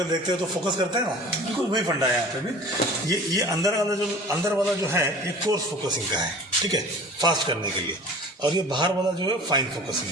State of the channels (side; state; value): both; normal; correlation 0.42